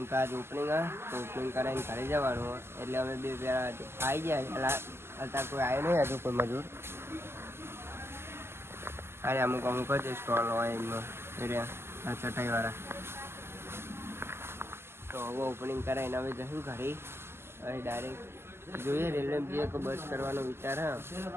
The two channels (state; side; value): late; left; 0.12 ms